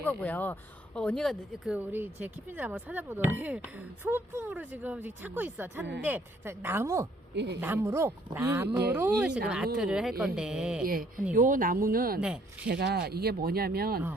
거고요. 언니가 그 우리 제 키핀을 한번 찾아보더니 소품으로 지금 찾고 있어. 찾는데 자, 나무로 이 지금 나무, 아트를 할 건데. 예. 언니. 요 나무는 네. 제가 이게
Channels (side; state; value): both; normal; correlation 0.64